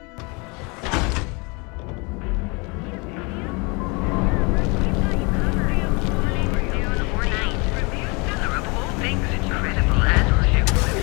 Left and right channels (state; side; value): quieter; right; 29.4 dB